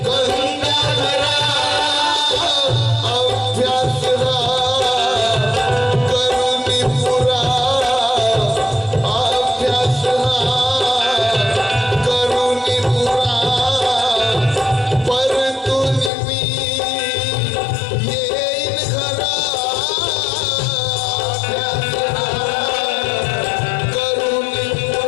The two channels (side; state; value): right; drops out; at 16.1 s